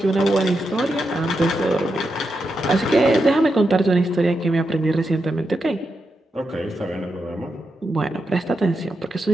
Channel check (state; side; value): normal; both; correlation 0.86